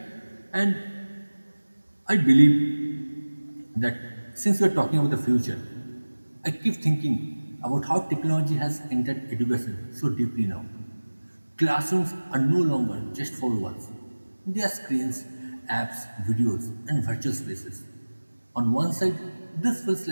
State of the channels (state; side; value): inverted; both; correlation -1.00